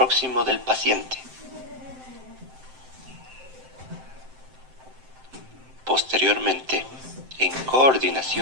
del paciente. Posteriormente, en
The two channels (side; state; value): left; late; 7.7 ms